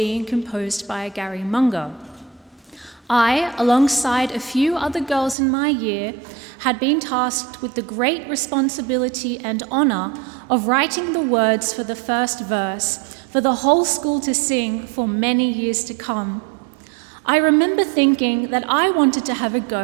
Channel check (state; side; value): drops out; left; at 5.4 s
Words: composed by Gary Munger. I, alongside a few other girls in my year, had been tasked with the great responsibility and honour of writing the words for the first verse for the whole school to sing for many years to come. I remember thinking that I wanted to have a